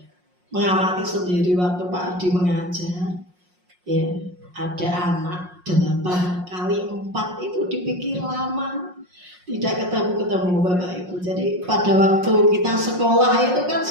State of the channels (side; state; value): left; late; 5.6 ms